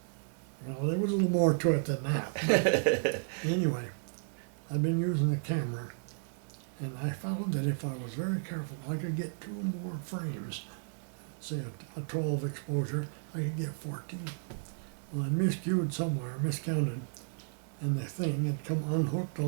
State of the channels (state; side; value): silent; left; digital silence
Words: Well, there was a little more to it than that. Anyway, I've been using the camera, and I found that if I was very careful, I could get 2 more frames. Say a 12 exposure, I could get 14. Well, I miscued somewhere, miscounted, and the thing had come unhooked